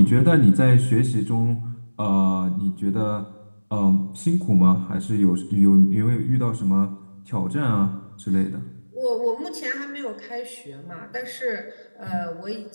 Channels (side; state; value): both; inverted; correlation -1.00